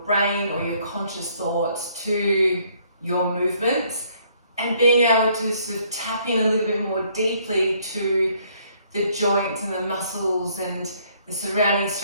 brain or your conscious thoughts to your movements and being able to sort of tap in a little bit more deeply to the joints and the muscles and the surrounding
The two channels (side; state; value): both; inverted; correlation -0.65